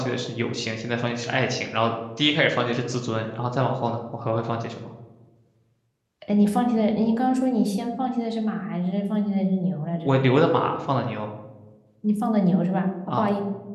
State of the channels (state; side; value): identical; both; correlation 1.00